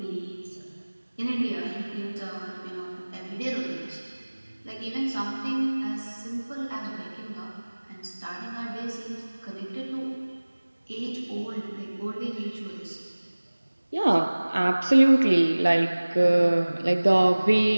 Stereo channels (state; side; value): inverted; both; correlation -1.00